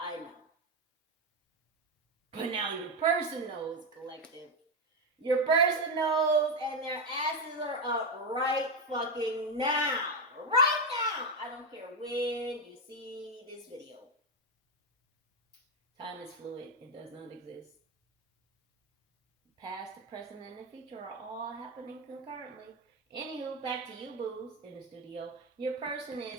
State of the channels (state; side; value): normal; both; correlation 0.08